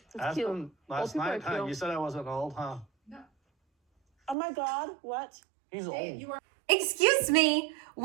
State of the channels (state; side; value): drops out; left; at 4.4 s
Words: Asked him last night, huh? You said I wasn't old, huh? Oh my God, what? He's old. Excuse me,